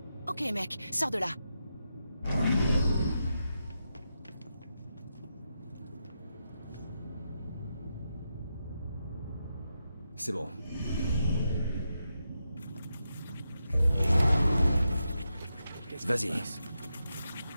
Ok mec, sors de là. C'est bon. Vas-y.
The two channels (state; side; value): inverted; both; correlation -0.86